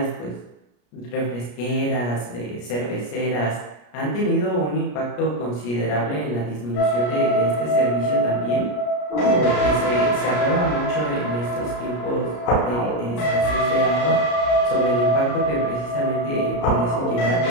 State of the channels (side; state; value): right; late; 33 ms